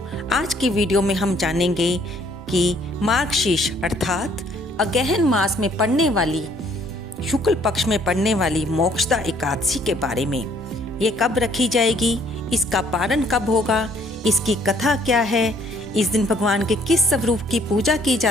आज की वीडियो में हम जानेंगे कि मार्गशीर्ष अर्थात अगहन मास में पड़ने वाली शुक्ल पक्ष में पड़ने वाली मोक्षदा एकादशी के बारे में। ये कब रखी जाएगी, इसका पारण कब होगा, इसकी कथा क्या है, इस दिन भगवान के किस स्वरूप की पूजा की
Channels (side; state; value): both; normal; correlation 0.62